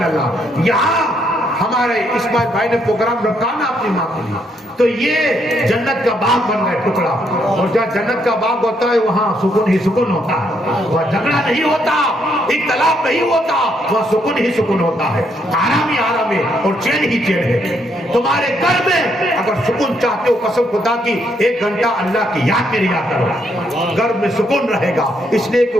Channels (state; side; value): normal; both; correlation 0.74